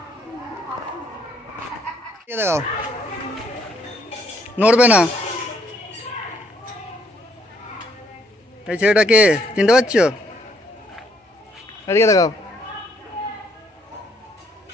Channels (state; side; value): normal; both; correlation 0.68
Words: দেখাও নড়বে না এই ছেলেটাকে চিনতে পারছো এদিকে দেখাও